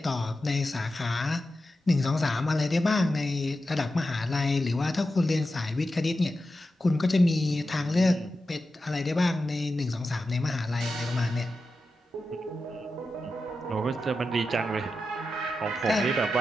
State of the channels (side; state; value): both; normal; correlation 0.91